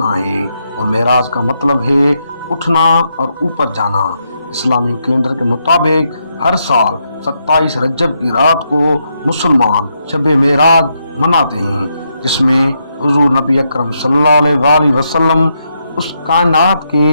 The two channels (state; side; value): inverted; both; correlation -0.80